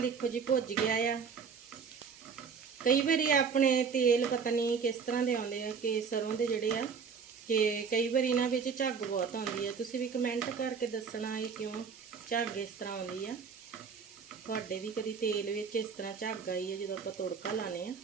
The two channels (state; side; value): quieter; left; 6.0 dB